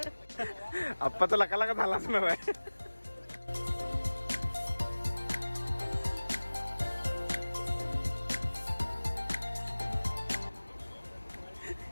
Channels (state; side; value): inverted; both; correlation -1.00